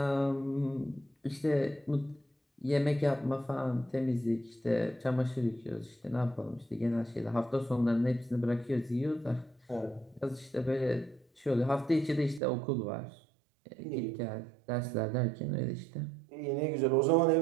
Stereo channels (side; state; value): left; drops out; at 12.4 s